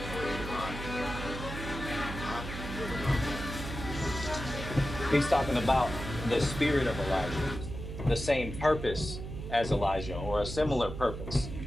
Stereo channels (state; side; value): noise; right; hum, 8 dB below the sound